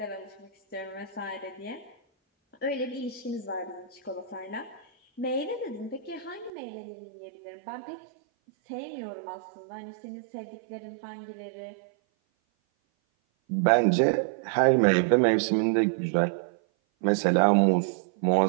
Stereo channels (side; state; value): left; drops out; at 6.5 s